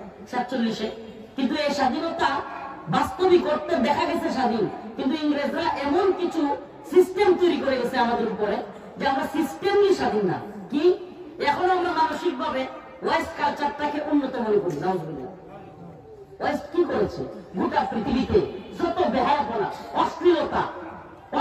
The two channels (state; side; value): identical; both; correlation 1.00